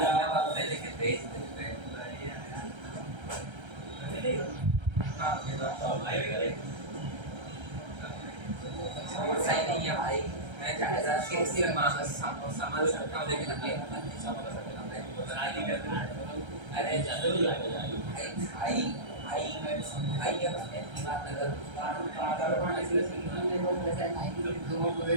वक्त में लेके भेज देते हैं। हाँ ये बात तो भाई करे सही नहीं है भाई, मैं ज़्यादा कैसे मांग समझ सकता हूँ लेकिन अभी नहीं समझ सकता अरे भाई भाई मैं भाई अब ऐसी बात अगर भाई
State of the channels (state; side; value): late; left; 1.3 ms